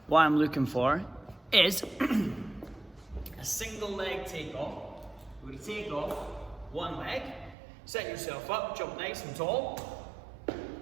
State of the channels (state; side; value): drops out; left; at 7.6 s